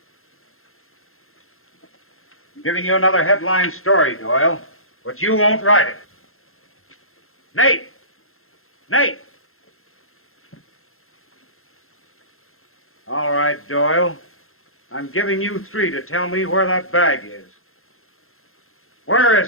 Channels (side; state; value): right; late; 0.62 ms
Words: I'm giving you another headline story, Doyle, but you won't write it. Nate! Nate! All right, Doyle. I'm giving you 3 to tell me where that bag is. Where